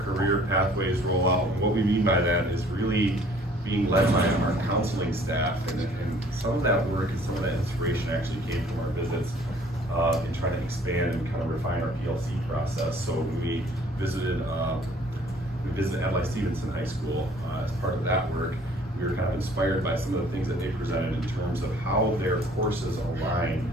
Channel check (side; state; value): both; normal; correlation 0.56